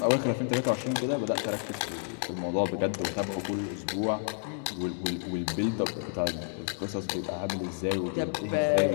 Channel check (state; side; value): silent; right; 58 dB below the other